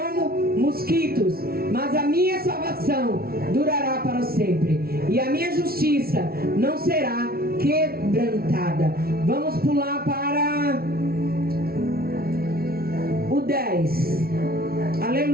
mosquitos, mas a minha salvação durará para sempre, e a minha justiça não será quebrantada. Vamos pular para o 10.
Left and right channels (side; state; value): left; late; 0.44 ms